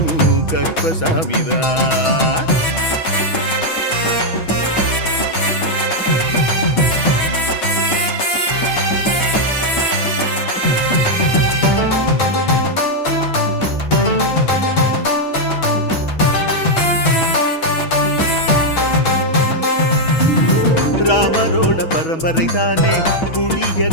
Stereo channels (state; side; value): late; right; 6.2 ms